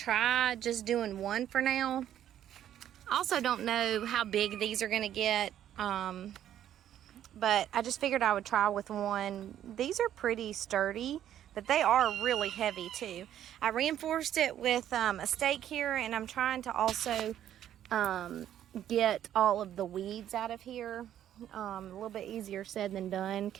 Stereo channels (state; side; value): quieter; left; 11.0 dB